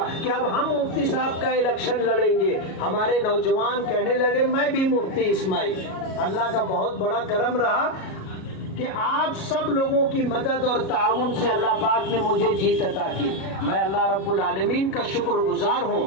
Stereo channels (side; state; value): right; late; 37 ms